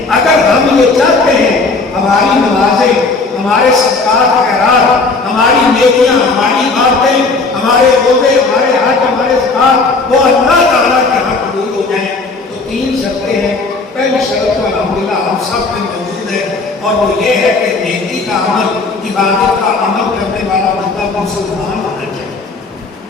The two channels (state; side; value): quieter; right; 3.8 dB